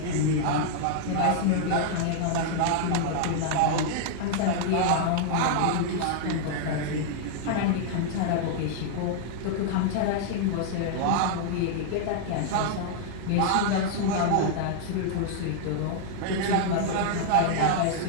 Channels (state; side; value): different; both; correlation -0.01